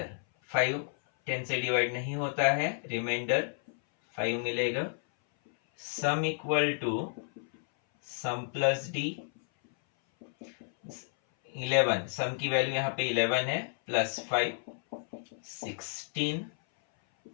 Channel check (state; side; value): silent; right; 57 dB below the other